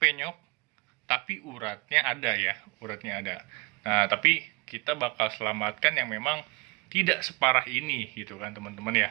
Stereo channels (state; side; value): quieter; left; 28.4 dB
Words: tapi uratnya ada ya, uratnya ada. Nah, tapi kita bakal selamatkan yang memang tidak separah ini gitu kan teman-teman